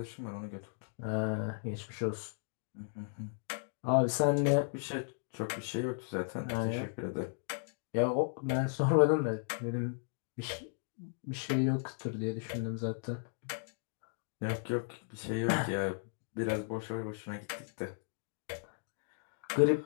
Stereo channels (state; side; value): silent; right; digital silence